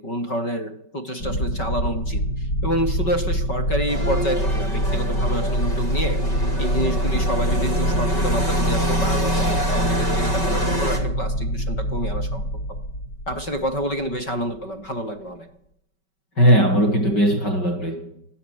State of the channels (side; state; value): right; late; 5.3 ms